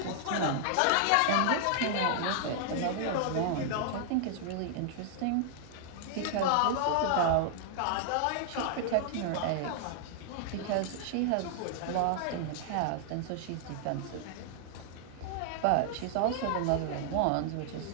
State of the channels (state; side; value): different; both; correlation -0.01